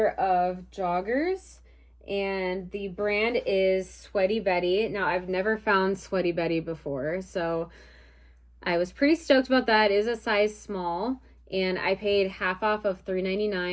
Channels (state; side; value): identical; both; correlation 1.00